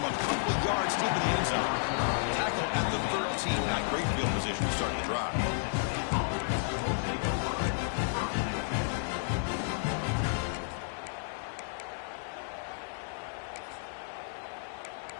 a couple of yards deep in the end zone. Tackle at the 13, not great field position to start the drive.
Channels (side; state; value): right; silent; 55 dB below the other